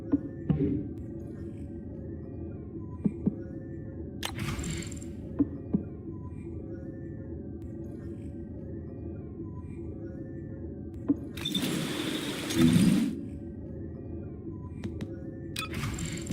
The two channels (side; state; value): both; identical; correlation 1.00